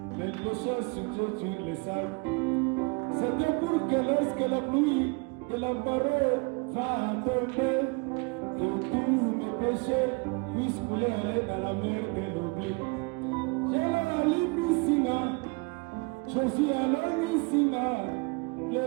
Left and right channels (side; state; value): left; quieter; 30.4 dB